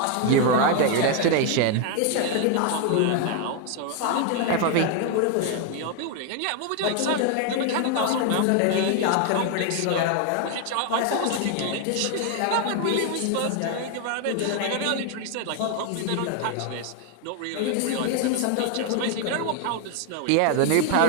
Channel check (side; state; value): both; different; correlation 0.01